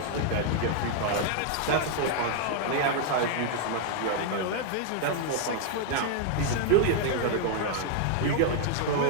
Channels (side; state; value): both; different; correlation 0.00